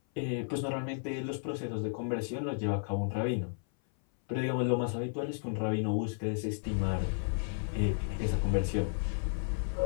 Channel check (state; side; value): silent; right; 56 dB below the other